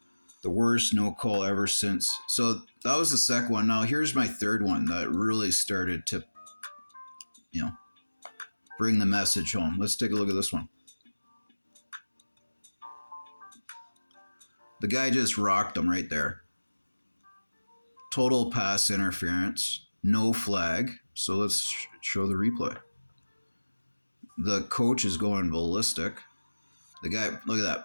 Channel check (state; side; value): inverted; both; correlation -1.00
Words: The worst no call ever since. So, that was the second one. Now, here's my third one that really started to, bring the message home. Let's take a look at this one. The guy just rocked him right there. Total pass interference, no flag. So let's show the replay. The coach is going ballistic. The guy, look at